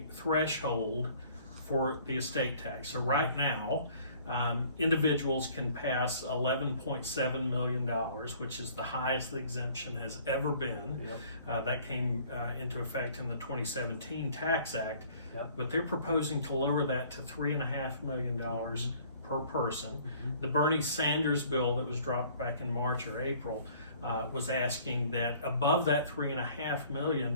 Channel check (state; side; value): inverted; both; correlation -0.54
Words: threshold for the estate tax. So right now, individuals can pass $11.7 million, which is the highest the exemption has ever been. Yep. That came into effect in the 2017 Tax Act. Yep. But they're proposing to lower that to $3.5 million per person. Mm-hmm. The Bernie Sanders bill that was dropped back in March or April was asking that above that $3.5